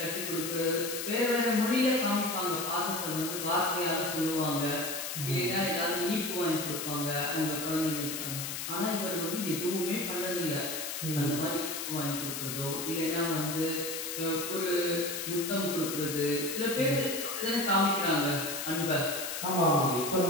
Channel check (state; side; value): noise; left; hiss, 5 dB below the sound